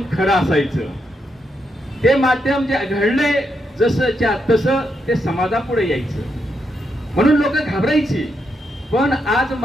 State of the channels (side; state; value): both; normal; correlation 0.81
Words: खरं असायचं. ते माध्यम जे घडले जसंच्या तसं ते समाजापुढे यायचं. म्हणून लोक घाबरायची. पण आज